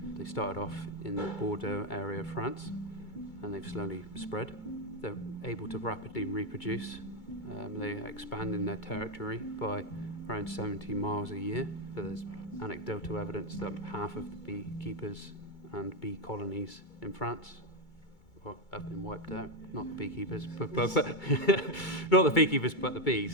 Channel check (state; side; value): late; right; 2.3 ms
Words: They started off in the Bordeaux area of France and they've slowly spread. They're able to rapidly reproduce. They expand in their territory by around 70 miles a year. So there's anecdotal evidence that half of the beekeepers and bee colonies in France have been wiped out. Not the beekeepers, but not the beekeepers, but the